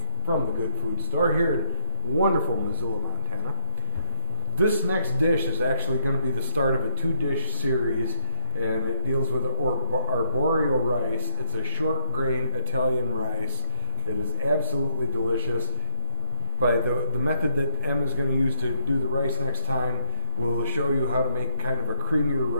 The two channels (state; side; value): inverted; both; correlation -0.74